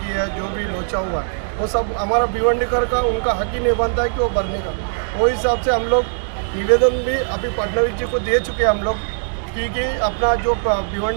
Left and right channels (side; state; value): left; silent; digital silence